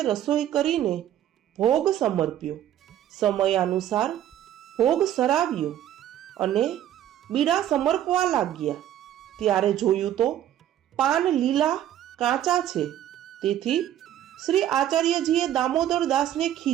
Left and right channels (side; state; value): left; quieter; 11.6 dB